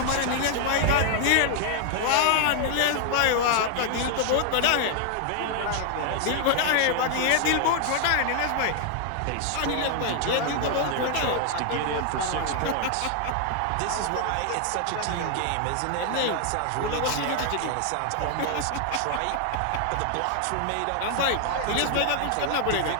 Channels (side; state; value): both; different; correlation 0.00